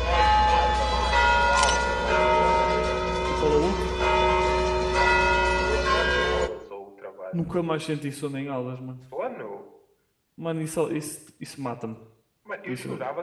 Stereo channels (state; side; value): identical; both; correlation 1.00